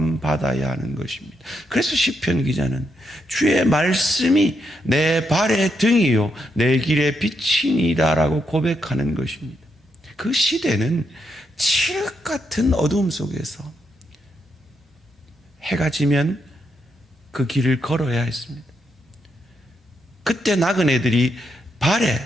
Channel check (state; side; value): normal; both; correlation 0.80